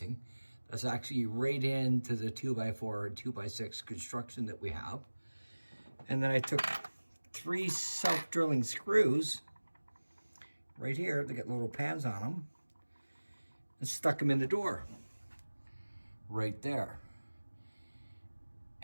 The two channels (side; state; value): both; inverted; correlation -1.00